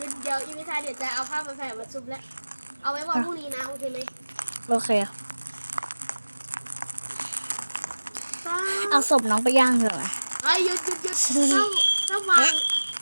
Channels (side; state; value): both; inverted; correlation -1.00